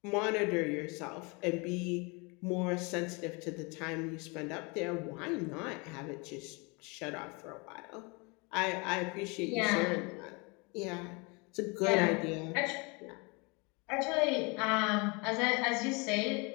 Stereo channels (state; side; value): quieter; right; 29.4 dB